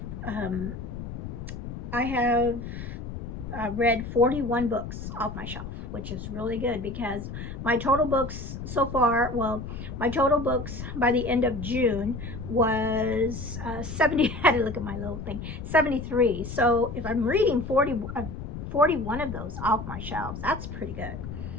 read 41 books off my shelf, which is really good, because my total books so far, well, my total books by the end of June was 70, I had to look at my little thing, 73. So if I'm reading 41 41 of those off my shelves. That's pretty good.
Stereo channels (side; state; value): left; noise; rumble, 8 dB below the sound